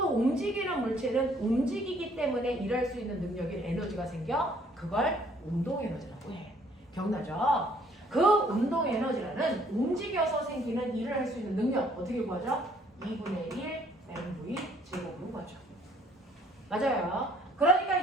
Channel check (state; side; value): normal; both; correlation 0.62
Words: 움직이는 물체는 움직이기 때문에 일할 수 있는 능력인 에너지가 생겨. 그걸 운동 에너지라고 해. 기억나죠? 그 운동 에너지라는 움직여서 생기는 일을 할 수 있는 능력 어떻게 구하죠? 2분의 1 mv 제곱으로 구하죠. 맞아요.